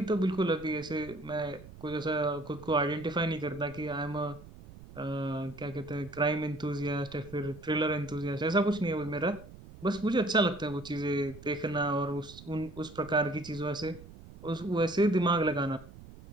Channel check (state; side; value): noise; right; rumble, 18 dB below the sound